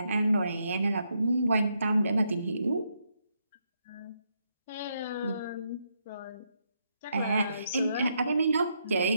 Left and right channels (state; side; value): inverted; both; correlation -0.78